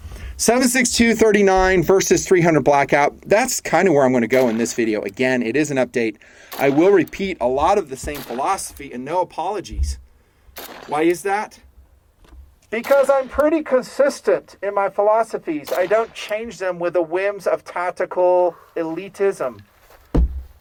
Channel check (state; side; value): identical; both; correlation 1.00